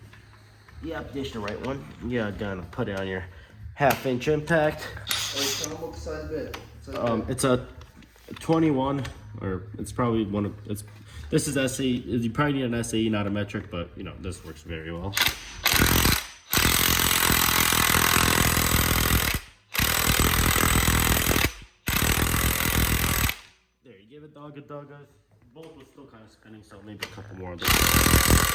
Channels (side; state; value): both; identical; correlation 1.00